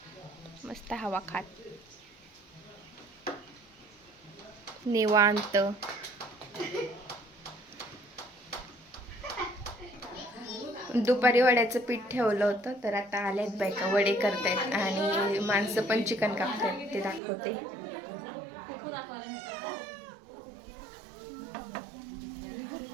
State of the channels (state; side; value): drops out; left; at 17.2 s